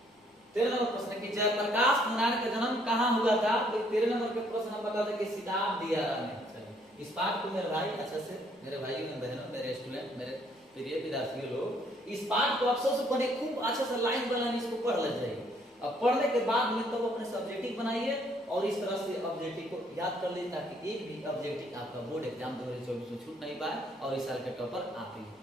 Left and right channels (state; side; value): normal; both; correlation 0.66